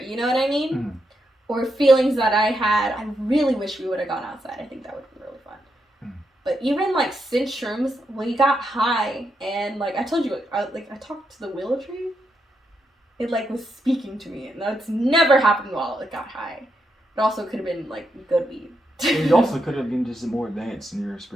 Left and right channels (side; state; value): both; normal; correlation 0.82